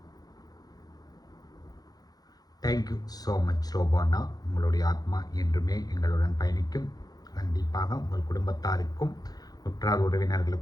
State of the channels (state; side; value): late; right; 0.19 ms